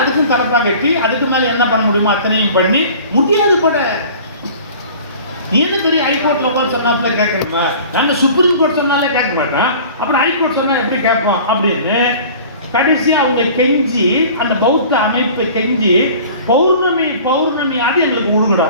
அதுக்கும் தரப்பா கட்டி அதுக்கு மேல என்ன பண்ண முடியுமோ அத்தனையும் பண்ணி முடியாது கூட. நீ என்ன தெரியும் ஹைகோர்ட்ல போய் சொன்னாப்புல கேட்கணுமா? நாங்க சுப்ரீம் கோர்ட் சொன்னாலே கேட்க மாட்டோம், அப்புறம் ஹைகோர்ட் சொன்னா எப்படி கேட்போம் அப்படின்னு கடைசியா அவங்க கெஞ்சி, அந்த பௌத்த அமைப்பு கெஞ்சி பௌர்ணமியாவது எங்களுக்கு விடுங்கடா.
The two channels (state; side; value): inverted; both; correlation -0.44